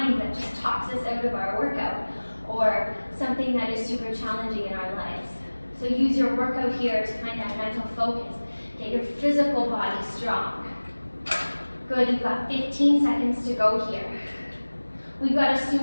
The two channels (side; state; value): both; inverted; correlation -1.00